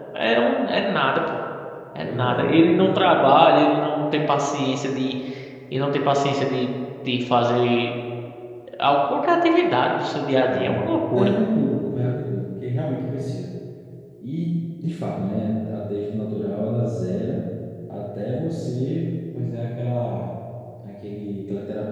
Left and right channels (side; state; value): both; identical; correlation 1.00